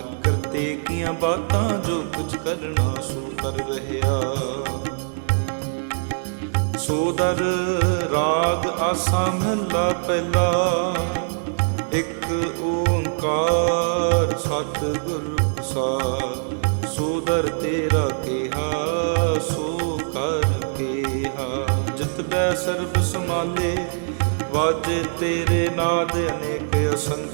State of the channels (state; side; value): silent; left; digital silence